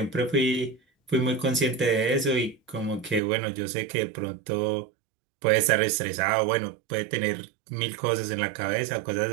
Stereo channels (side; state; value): left; drops out; at 3.2 s